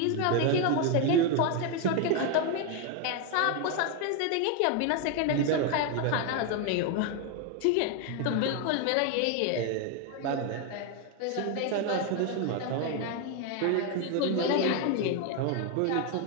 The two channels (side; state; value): both; different; correlation 0.01